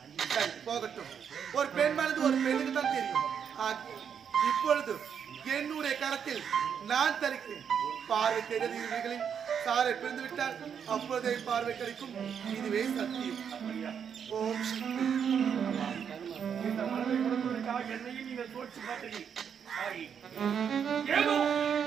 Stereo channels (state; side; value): quieter; left; 7.6 dB